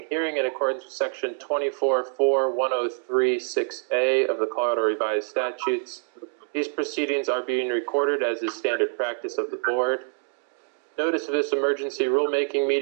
hearing in accordance with Section 24.4.1036A of the Colorado Revised Statutes. These proceedings are being recorded as is standard practice of the board. Notice of this emergency rulemaking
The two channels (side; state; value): left; silent; digital silence